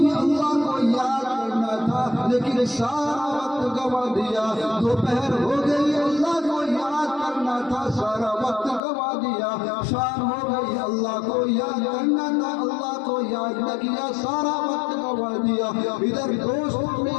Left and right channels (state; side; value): drops out; right; at 8.8 s